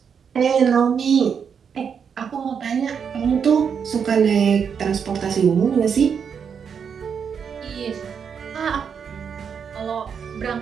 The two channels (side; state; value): left; quieter; 6.9 dB